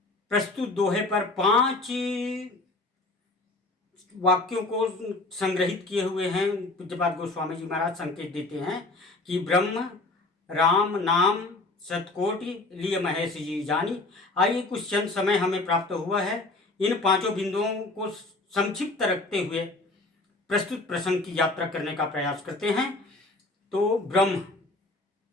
प्रस्तुत दोहे पर 5 वाक्यों को संग्रहित किए हुए हैं। पूज्यपाद गोस्वामी जी महाराज संकेत देते हैं कि ब्रह्म राम नाम शतकोटि लिय महेश जी जानी। आइए कुछ क्षण समय हमें प्राप्त हुआ है, इन 5 बिंदुओं को संक्षिप्त रखते हुए प्रस्तुत प्रसंग की यात्रा करने का प्रयास करते हैं। तो ब्रह्म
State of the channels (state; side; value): quieter; right; 3.1 dB